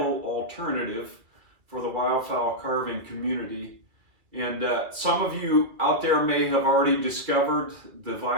alternative for the wildfowl carving community. And some of you out there may have already discovered the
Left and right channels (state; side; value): late; left; 2.3 ms